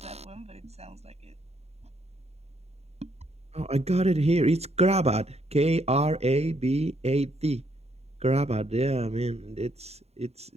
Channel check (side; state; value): left; late; 0.30 ms